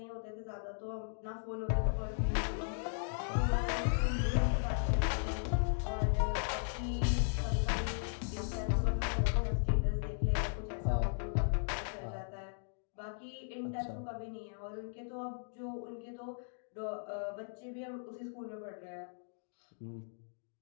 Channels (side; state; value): right; silent; digital silence